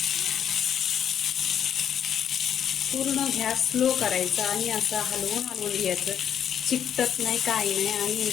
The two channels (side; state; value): right; quieter; 9.0 dB